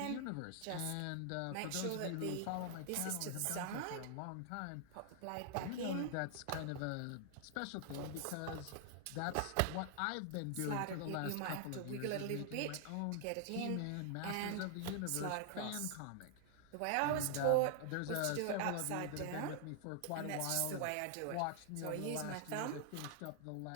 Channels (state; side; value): different; both; correlation 0.00